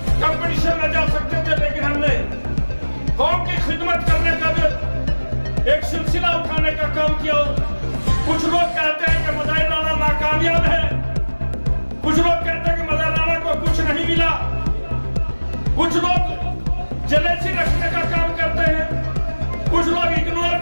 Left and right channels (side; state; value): both; inverted; correlation -1.00